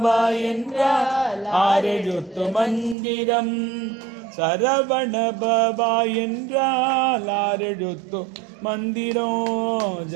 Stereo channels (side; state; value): left; drops out; at 3.0 s